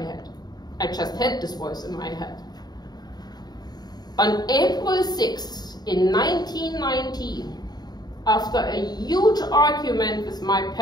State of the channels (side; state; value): right; late; 0.20 ms